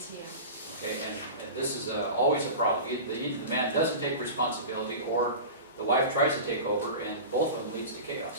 Okay, and this is always a problem. Either the man doesn't take responsibility, or the wife tries to take over, and both of them leads to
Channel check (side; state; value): both; inverted; correlation -0.31